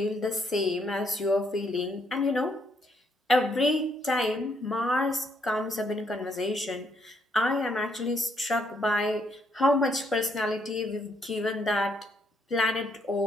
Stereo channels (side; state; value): both; normal; correlation 0.72